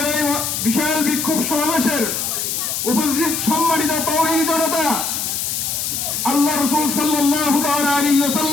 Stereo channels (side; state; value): left; noise; hiss, 2 dB below the sound